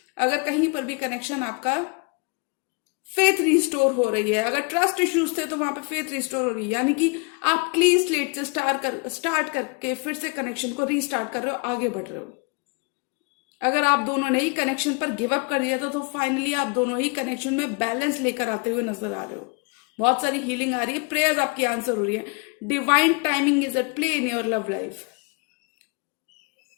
अगर कहीं पर भी कनेक्शन आपका फेथ रिस्टोर हो रही है, अगर ट्रस्ट इश्यूज थे तो वहां पे फेथ रिस्टोर हो रही है, यानी कि आप क्लीन स्लेट से स्टार्ट करके फिर से कनेक्शन को रीस्टार्ट कर रहे हो, आगे बढ़ रहे हो। अगर आप दोनों ने ही कनेक्शन पर गिव अप कर दिया था, तो फाइनली आप दोनों ही कनेक्शन में बैलेंस लेकर आते हुए नजर आ रहे हो। बहुत सारी हीलिंग आ रही है, प्रेयर्स आपकी आंसर हो रही है। Divine timing is at play in your love life.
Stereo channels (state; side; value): quieter; right; 31.7 dB